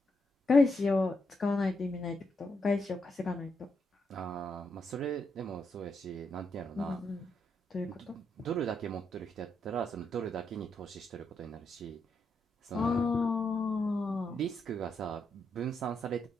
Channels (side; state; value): both; normal; correlation 0.81